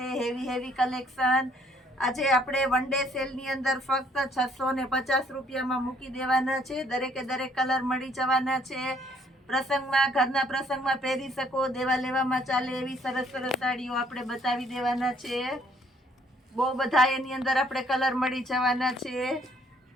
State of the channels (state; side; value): normal; both; correlation 0.64